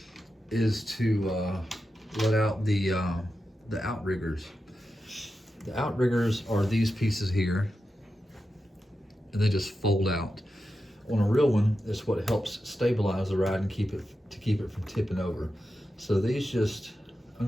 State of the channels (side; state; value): both; normal; correlation 0.90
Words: is to let out the outriggers. The outriggers are these pieces here, and they just fold out. On a real one, it's what helps stabilize the ride and keep it from tipping over. So these just